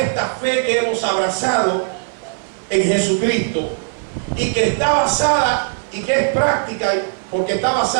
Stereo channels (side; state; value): left; silent; 56 dB below the other